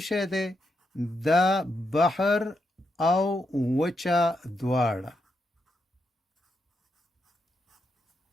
شی دی؟ دا بحر او وچه دواړه.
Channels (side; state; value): both; normal; correlation 0.82